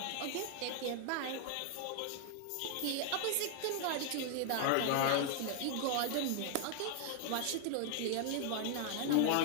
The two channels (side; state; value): both; different; correlation 0.00